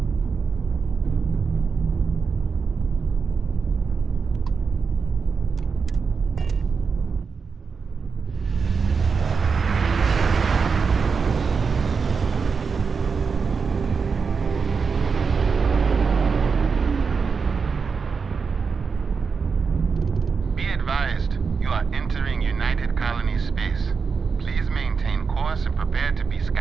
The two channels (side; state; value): left; quieter; 5.3 dB